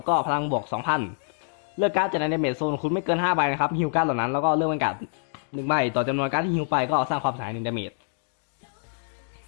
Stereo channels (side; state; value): right; silent; 61 dB below the other